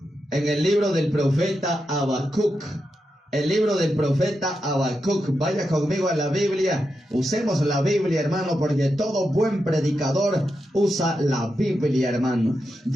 en el libro del profeta Habacuc. El libro del profeta Habacuc. Vaya conmigo a la Biblia. Usemos la Biblia, hermano, porque todo buen predicador usa la Biblia, hermano.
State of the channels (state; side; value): normal; both; correlation 0.87